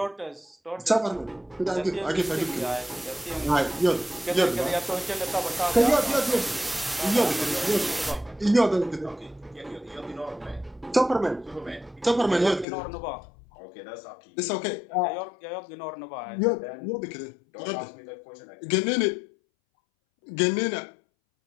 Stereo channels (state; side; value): drops out; right; at 12.7 s